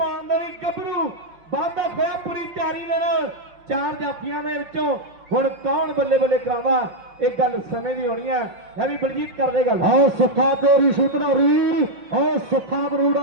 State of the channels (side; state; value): left; late; 5.2 ms